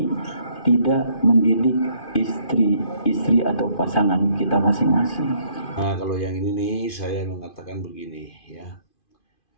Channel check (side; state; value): right; late; 2.5 ms